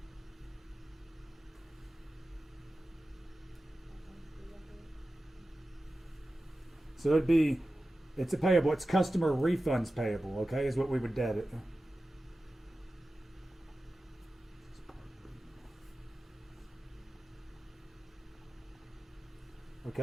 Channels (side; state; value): both; normal; correlation 0.94